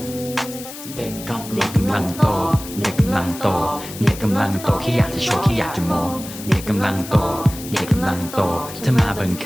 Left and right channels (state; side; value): noise; left; hiss, 13 dB below the sound